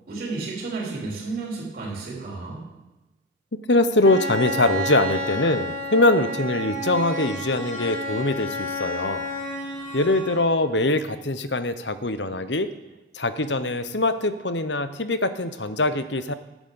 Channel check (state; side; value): normal; both; correlation -0.01